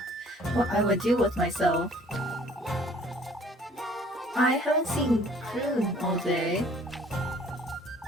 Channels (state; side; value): normal; both; correlation 0.55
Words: would do with myself. I haven't seen Kroon all day.